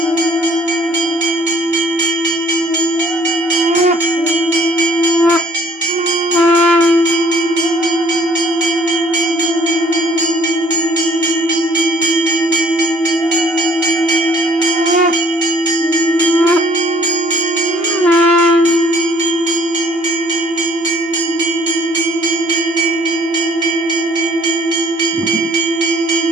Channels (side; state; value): both; normal; correlation 0.58